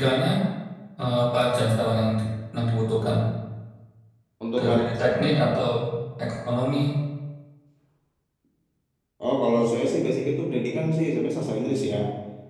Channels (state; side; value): identical; both; correlation 1.00